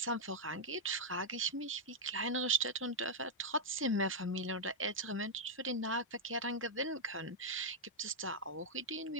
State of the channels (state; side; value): normal; both; correlation -0.03